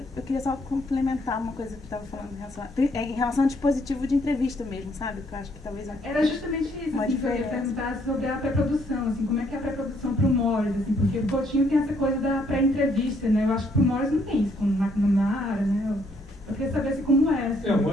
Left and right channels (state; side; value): normal; both; correlation 0.69